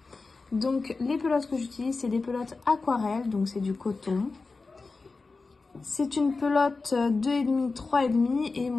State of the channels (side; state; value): right; quieter; 4.0 dB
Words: Donc les pelotes que j'utilise, c'est des pelotes aquarelles, donc c'est du coton. C'est une pelote 2,5, 3,5 et